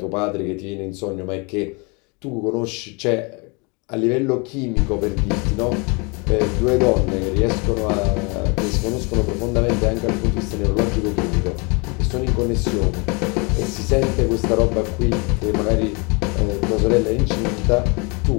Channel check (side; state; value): right; quieter; 30.6 dB